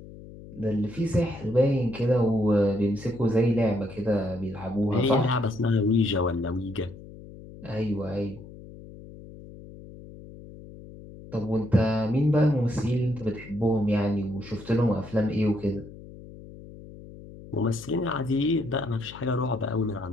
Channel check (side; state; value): left; noise; hum, 17 dB below the sound